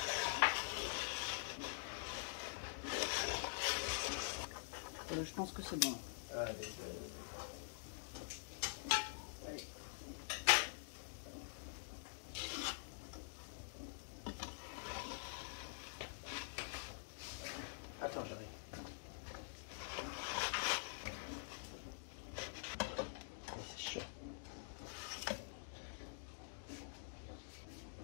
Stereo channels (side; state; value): right; silent; digital silence